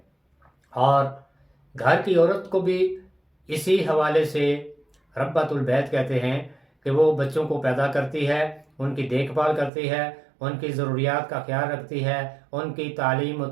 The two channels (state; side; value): drops out; left; at 9.7 s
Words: اور گھر کی عورت کو بھی اسی حوالے سے ربۃ البیت کہتے ہیں کہ وہ بچوں کو پیدا کرتی ہے، ان کی دیکھ بھال کرتی ہے، ان کی ضروریات کا خیال رکھتی ہے، ان کی تعلیم و